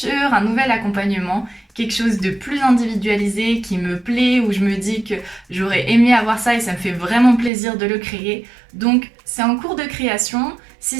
un nouvel accompagnement quelque chose de plus individualisé qui me plaît, où je me dis que j'aurais aimé avoir ça et ça me fait vraiment plaisir de le créer. Donc c'est en cours de création. Si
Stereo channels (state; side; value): drops out; left; at 7.5 s